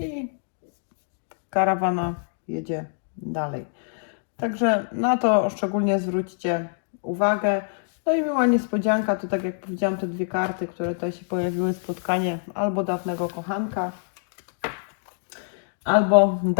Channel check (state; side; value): silent; right; digital silence